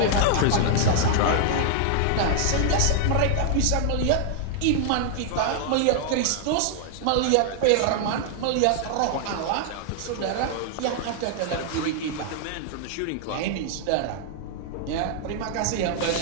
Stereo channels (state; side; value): different; both; correlation -0.01